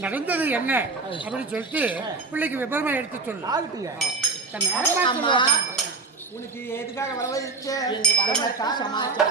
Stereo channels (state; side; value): quieter; left; 4.0 dB